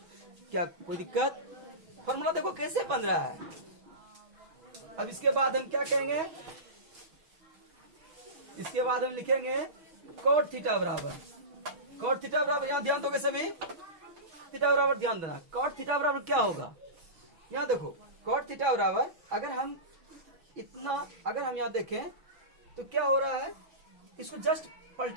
क्या कोई दिक्कत, फॉर्मूला देखो कैसे बन रहा है। अब इसके बाद हम क्या कहेंगे, इसके बाद हम लिखेंगे cot थीटा बराबर यहाँ ध्यान दोगे सभी, थीटा बराबर ध्यान देना, cot थीटा बराबर क्या होगा, यहाँ देखो cot थीटा बराबर अगर हम यहाँ देखें तो क्या हो रहा है, इसको जस्ट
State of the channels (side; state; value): left; late; 6.2 ms